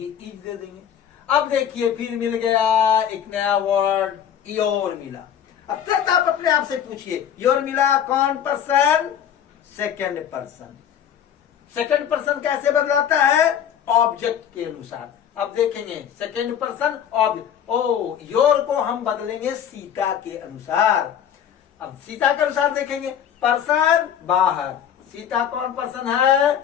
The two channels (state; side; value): quieter; right; 9.2 dB